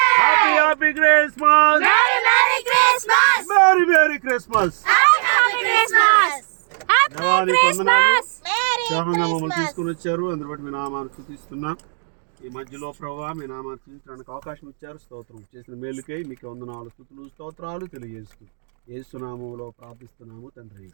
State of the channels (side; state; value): left; silent; digital silence